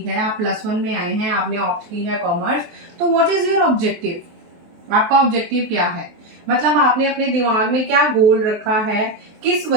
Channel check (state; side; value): late; left; 23 ms